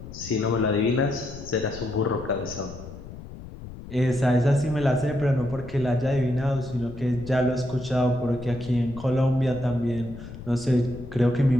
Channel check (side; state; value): left; noise; rumble, 13 dB below the sound